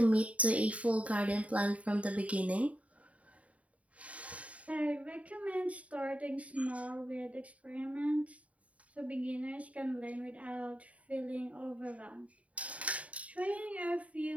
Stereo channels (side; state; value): left; late; 0.067 ms